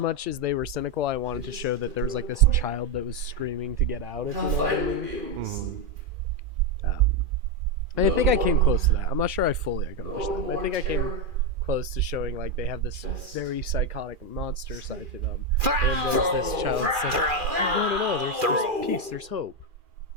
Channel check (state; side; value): late; left; 2.4 ms